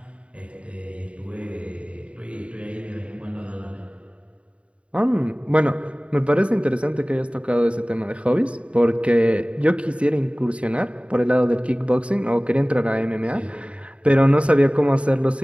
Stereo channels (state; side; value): late; left; 0.061 ms